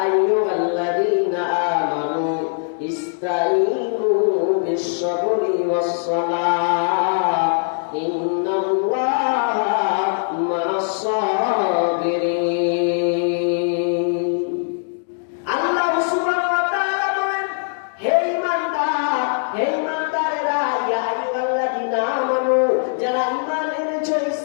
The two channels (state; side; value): silent; right; digital silence